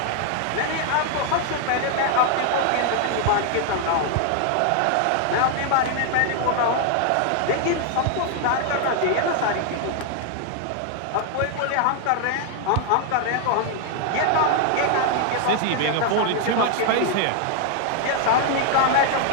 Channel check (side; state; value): both; different; correlation 0.00